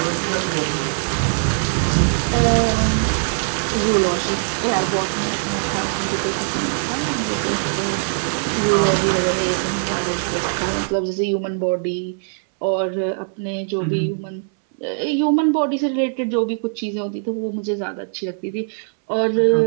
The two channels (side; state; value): left; silent; digital silence